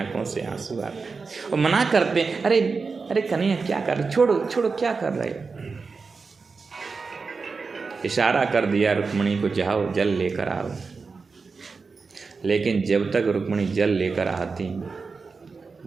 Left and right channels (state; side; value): quieter; left; 4.6 dB